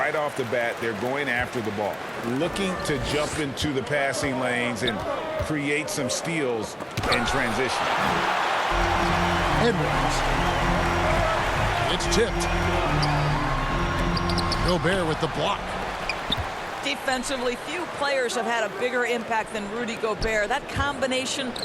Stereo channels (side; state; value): both; identical; correlation 1.00